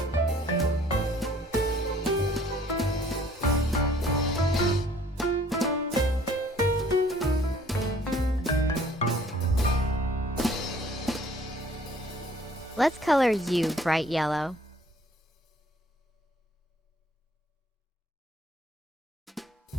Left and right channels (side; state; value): both; normal; correlation 0.57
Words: Let's color U bright yellow.